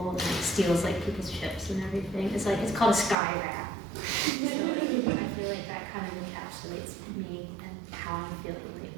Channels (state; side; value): drops out; left; at 3.2 s